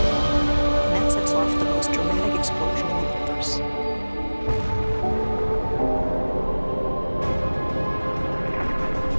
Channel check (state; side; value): inverted; both; correlation -1.00